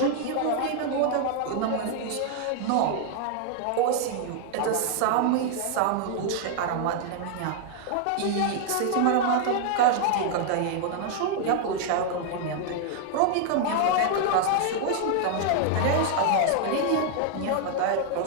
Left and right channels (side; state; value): both; different; correlation 0.00